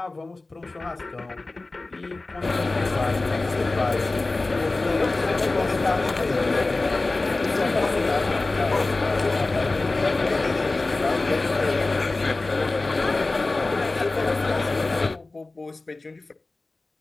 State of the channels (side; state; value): right; quieter; 3.2 dB